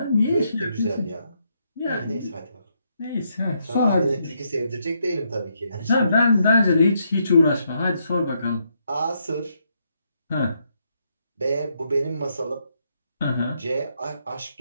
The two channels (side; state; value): both; inverted; correlation -0.77